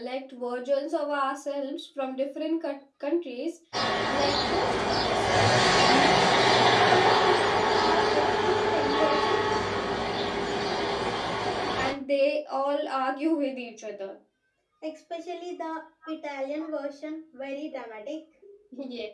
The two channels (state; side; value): identical; both; correlation 1.00